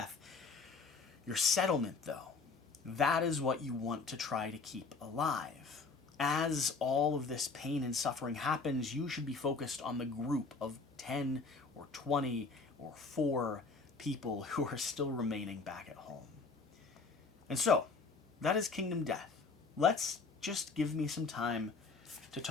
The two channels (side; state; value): right; quieter; 4.4 dB